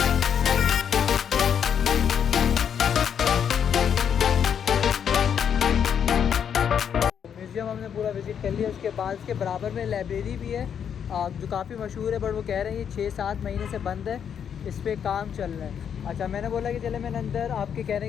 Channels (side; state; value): right; quieter; 8.1 dB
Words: म्यूज़ियम हमने पूरा विज़िट कर लिया। उसके बाद इसके बराबर में लाइब्रेरी भी है जो काफ़ी मशहूर है, बट वो कह रहे हैं ये 6-7 महीने से बंद है, इस पर काम चल रहा है। अच्छा, मैंने बोला कि चले मैंने अंदर आपके